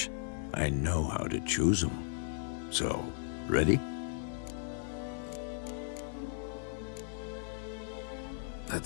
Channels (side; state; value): right; silent; digital silence